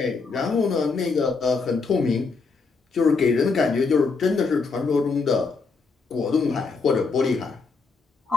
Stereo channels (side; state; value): right; quieter; 4.5 dB